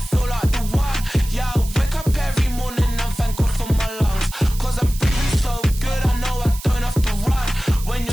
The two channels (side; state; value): right; noise; hiss, 14 dB below the sound